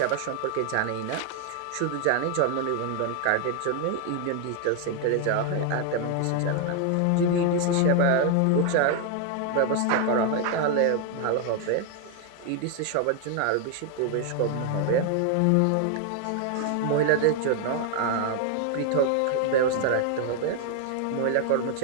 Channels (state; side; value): different; both; correlation 0.00